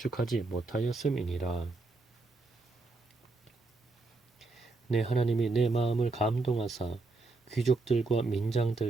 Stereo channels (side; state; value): left; quieter; 3.4 dB